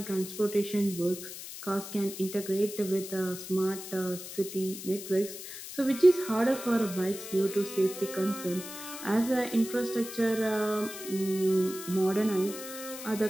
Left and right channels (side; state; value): left; noise; hiss, 11 dB below the sound